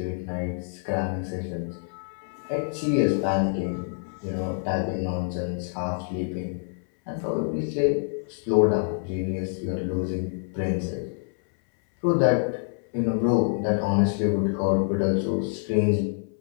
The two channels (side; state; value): right; silent; 61 dB below the other